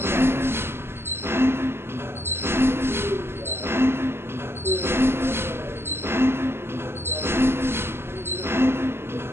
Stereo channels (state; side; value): late; left; 0.11 ms